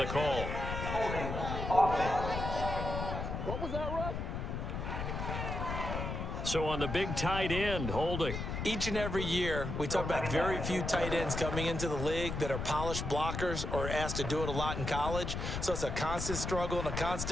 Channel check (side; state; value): left; noise; rumble, 4 dB below the sound